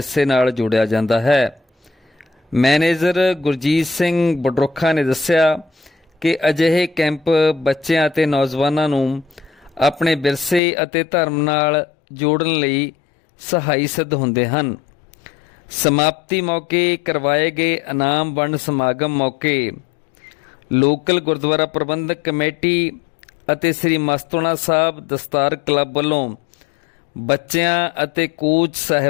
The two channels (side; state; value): right; drops out; at 10.6 s